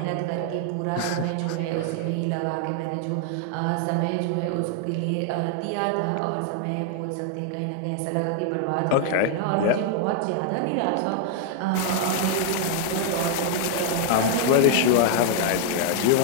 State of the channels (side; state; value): both; different; correlation 0.00